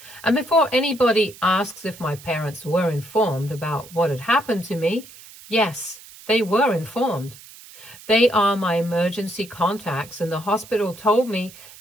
And before anybody asks if my parents were informed about what had happened to me, yes, they were informed. They are my emergency contacts, and the hospital told me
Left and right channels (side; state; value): right; noise; hiss, 19 dB below the sound